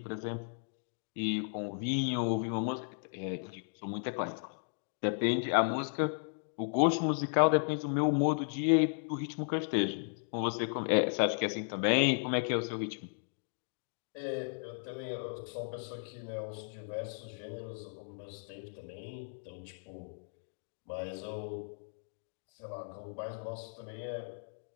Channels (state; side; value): silent; right; digital silence